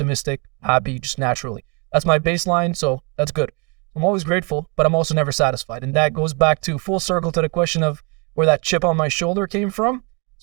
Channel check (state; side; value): quieter; left; 32.6 dB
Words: happy, just naturally. That's my baseline, so that's good. I'm always grateful, but I'm also never satisfied. And that goes back to full circle to the question of where that chip on my shoulder came from.